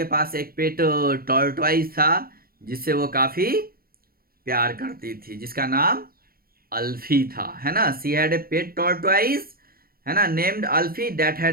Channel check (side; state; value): left; late; 0.43 ms